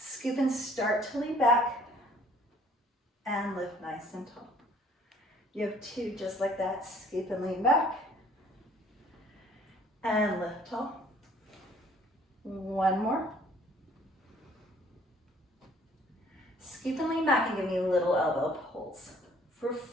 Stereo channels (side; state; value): both; normal; correlation 0.57